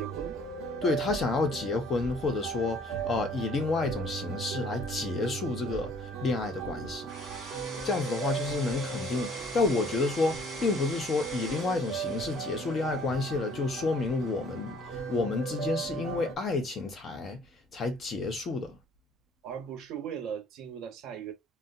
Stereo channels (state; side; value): normal; both; correlation 0.57